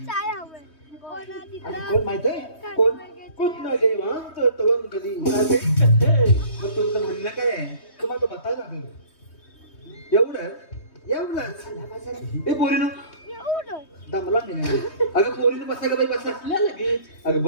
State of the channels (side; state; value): right; late; 3.2 ms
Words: कोण माहित आहे कोण कोण ना देवांत तवंग गली मग तुमचं म्हणणं काय आहे तुम्हाला बतायला लागेल एवढंच हे पोरीनं दमला नाही अगं पोरीनं बसा का बाई बसा लगेच. अगं